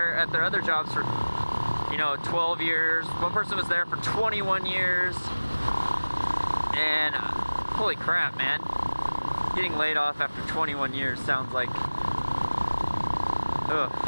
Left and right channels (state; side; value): inverted; both; correlation -1.00